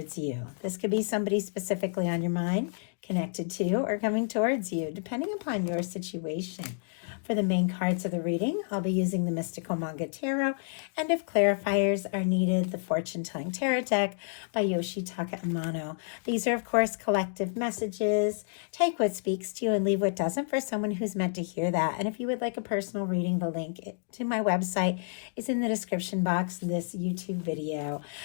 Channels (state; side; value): silent; right; digital silence